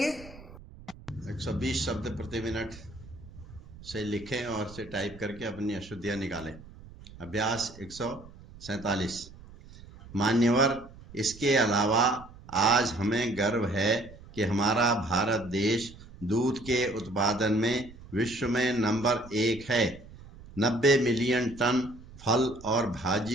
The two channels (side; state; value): right; noise; rumble, 19 dB below the sound